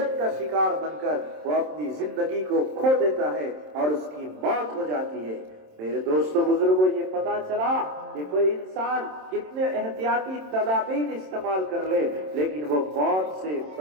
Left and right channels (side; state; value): left; late; 27 ms